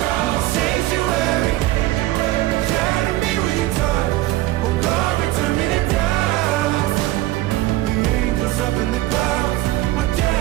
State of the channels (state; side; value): quieter; left; 16.7 dB